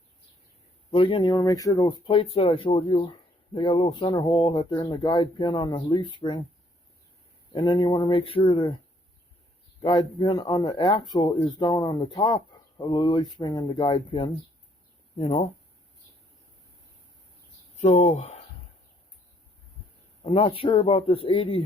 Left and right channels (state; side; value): normal; both; correlation 0.67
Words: But again, you want to make sure those plates that I showed you, they got a little center hole that they're in the guide pin on the leaf spring. And then you want to make sure the guide pin on the axle is down on the top of the leaf spring and the guide pin, you know. So, I'm not sure about this